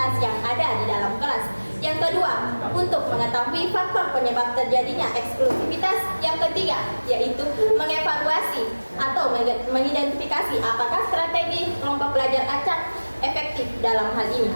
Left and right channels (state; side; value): inverted; both; correlation -1.00